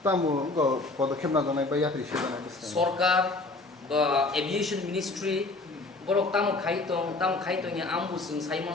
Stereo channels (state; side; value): quieter; right; 3.3 dB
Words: tamu go পদক্ষেপ না জানাই বা ইয়াত্রী সেবা নাই সরকার বা aviation ministry borok tamu khaitong ya ambu sing